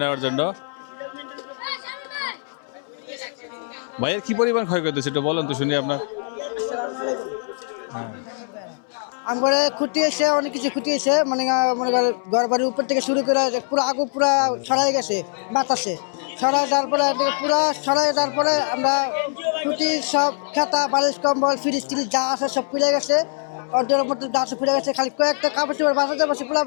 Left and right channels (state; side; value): silent; right; 64 dB below the other